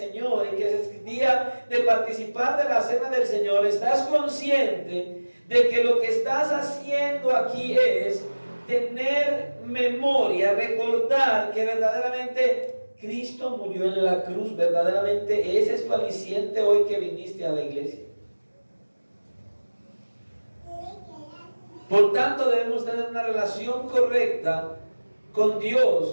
y que es día de participar de la cena del Señor, estás consciente de que lo que estás haciendo aquí es tener memoria, recordar que verdaderamente Cristo murió en la cruz? Verdaderamente ese es tu aliciente hoy que viniste a la iglesia. Por tanto, debemos tener una relación correcta con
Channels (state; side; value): inverted; both; correlation -1.00